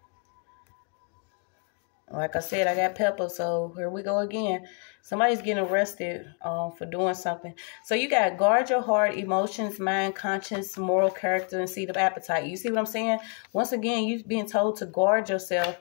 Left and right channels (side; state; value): right; quieter; 39.7 dB